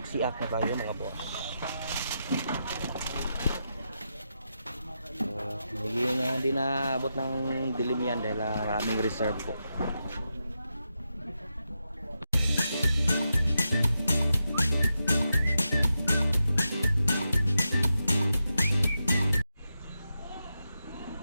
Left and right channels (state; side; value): inverted; both; correlation -0.87